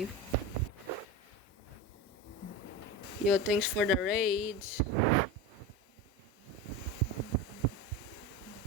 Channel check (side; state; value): both; normal; correlation 0.24